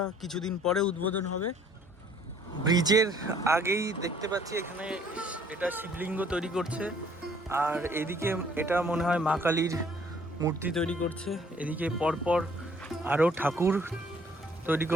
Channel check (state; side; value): normal; both; correlation 0.59